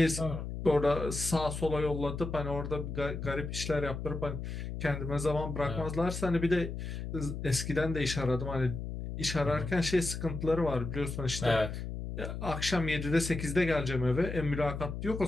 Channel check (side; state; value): left; noise; hum, 6 dB below the sound